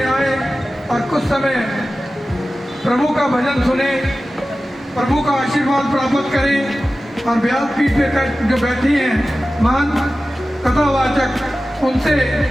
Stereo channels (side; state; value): both; normal; correlation 0.95